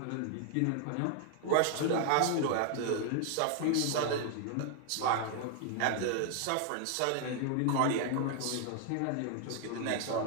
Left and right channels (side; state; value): both; different; correlation 0.00